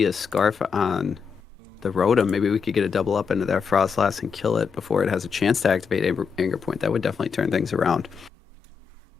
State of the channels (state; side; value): quieter; right; 6.1 dB